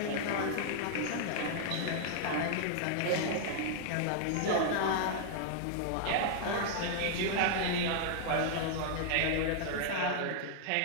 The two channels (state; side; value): different; both; correlation -0.01